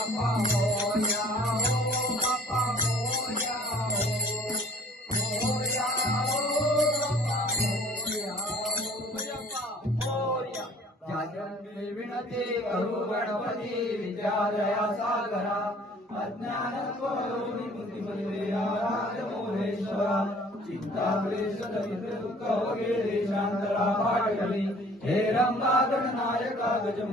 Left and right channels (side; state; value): both; normal; correlation 0.53